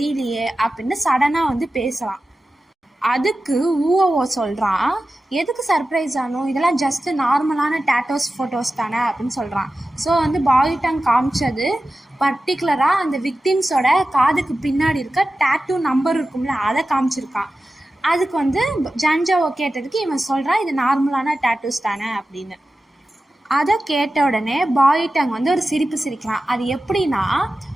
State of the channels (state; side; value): normal; both; correlation 0.94